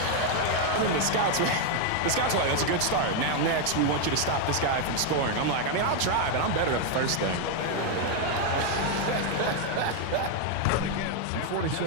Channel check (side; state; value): both; different; correlation 0.01